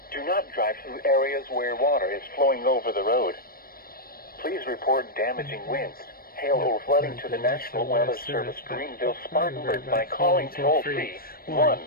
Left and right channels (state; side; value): late; right; 0.43 ms